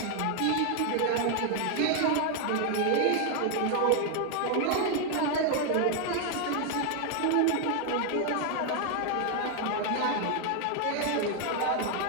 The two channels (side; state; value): both; different; correlation 0.00